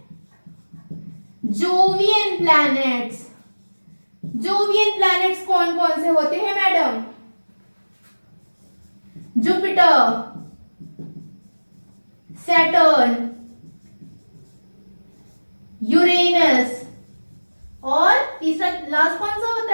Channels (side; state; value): both; inverted; correlation -1.00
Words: Jovian planets. जोवियन प्लैनेट्स कौन कौन से होते हैं मैडम? जुपिटर, सैटर्न, यूरेनस और तीसरा लास्ट कौन सा